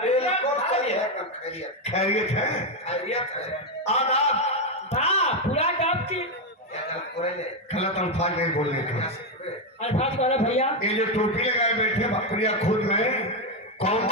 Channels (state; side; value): normal; both; correlation 0.06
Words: सही है। खैरियत खैरियत है। खैरियत है। आदाब पूरा डाब की गलत अल्फाज नहीं बोलने का। अल्फाज बोलो भैया। ये जो टोपी लगाए बैठे बकरिया खुद में कौन